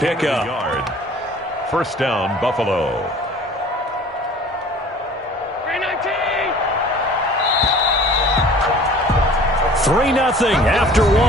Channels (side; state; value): both; normal; correlation 0.48